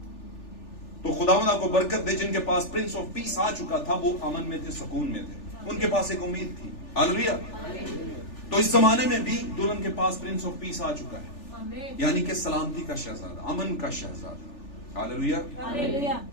तो खुदावंद आपको बरकत दे। जिनके पास प्रिंस ऑफ पीस आ चुका था, वो अमन में थे, सुकून में थे, उनके पास एक उम्मीद थी। हालेलुया। तो इस जमाने में भी दुल्हन के पास प्रिंस ऑफ पीस आ चुका है, यानी कि सलामती का शहजादा, अमन का शहजादा। हालेलुया।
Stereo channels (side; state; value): right; late; 3.4 ms